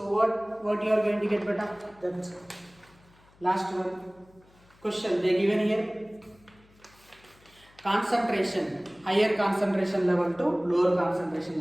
what you are going to get beta? That's last one. Question they given here. Concentration, higher concentration level to lower concentration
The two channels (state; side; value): noise; left; hum, 29 dB below the sound